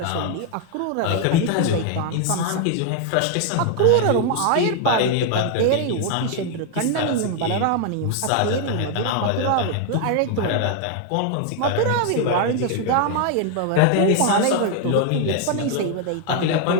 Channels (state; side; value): different; both; correlation 0.00